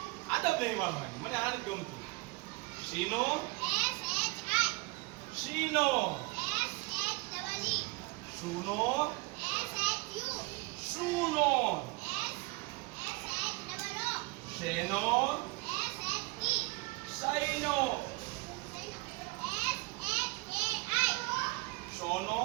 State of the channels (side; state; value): left; quieter; 25.7 dB